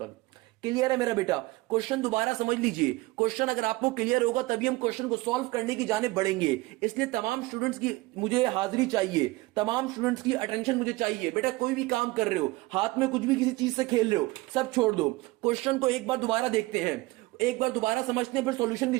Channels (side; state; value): left; quieter; 21.0 dB